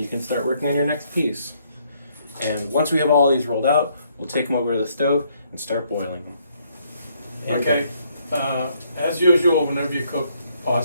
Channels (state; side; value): inverted; both; correlation -0.70